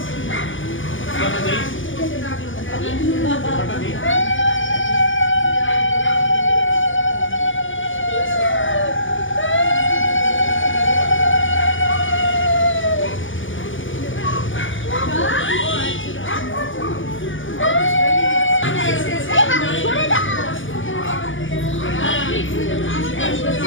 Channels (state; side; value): late; right; 0.57 ms